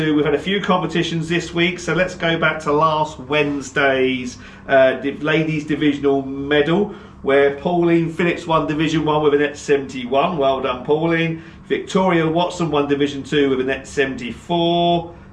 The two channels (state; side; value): identical; both; correlation 1.00